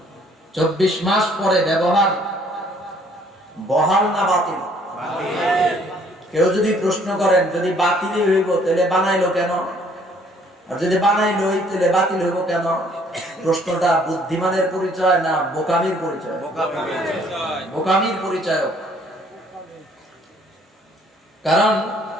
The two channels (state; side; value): normal; both; correlation 0.61